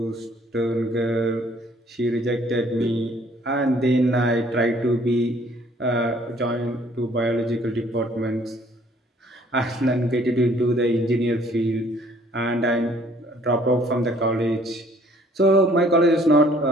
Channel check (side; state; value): both; normal; correlation 0.59